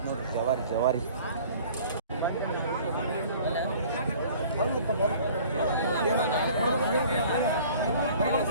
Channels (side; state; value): both; inverted; correlation -0.49